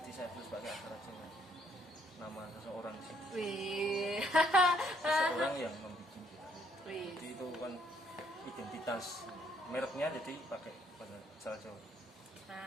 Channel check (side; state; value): both; normal; correlation 0.67